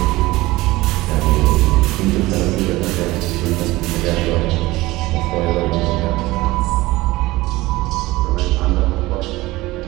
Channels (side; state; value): left; quieter; 19.3 dB